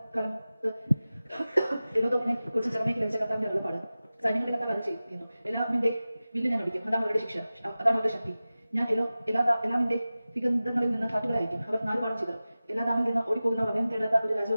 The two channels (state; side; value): inverted; both; correlation -0.96